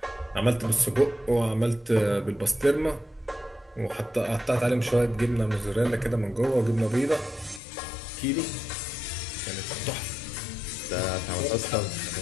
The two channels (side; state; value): right; drops out; at 7.6 s